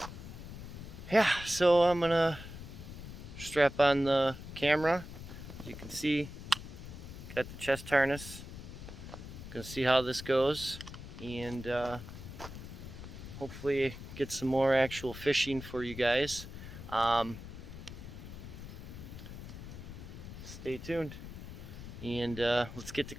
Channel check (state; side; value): noise; left; rumble, 11 dB below the sound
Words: yeah, so I'm gonna strap on the camera. As you can see, got the chest harness. Gonna see how this goes, and hopefully get some more actual fishing for you guys. Stay tuned, and let's get to